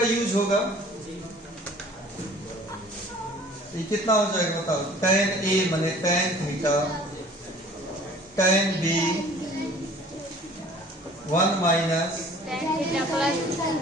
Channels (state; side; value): normal; both; correlation 0.50